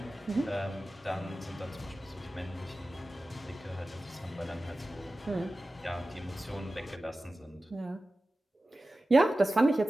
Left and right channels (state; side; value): normal; both; correlation 0.95